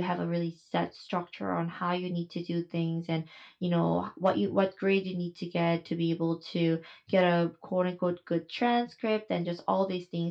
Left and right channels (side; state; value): both; identical; correlation 1.00